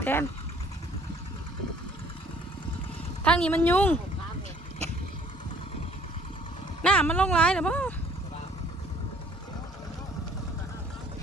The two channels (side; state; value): both; normal; correlation 0.57